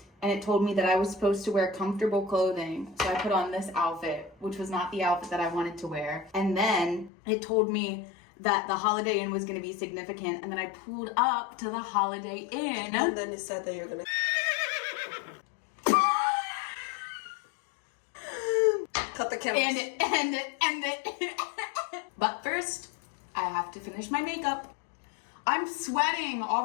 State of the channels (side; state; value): right; drops out; at 7.1 s